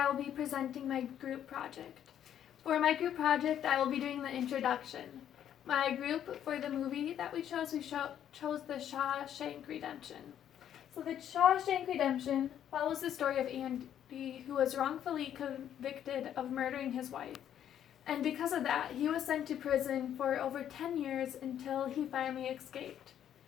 will be presenting my group project. For my group project, I will be doing the introduction. My group for the movie that we chose the Shawshank Redemption. So the Shawshank Redemption follows the story of Andy, who was wrongfully convicted of murdering his wife. And because of that, he was sent to prison for over 10 years until he finally escaped.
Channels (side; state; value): right; quieter; 10.1 dB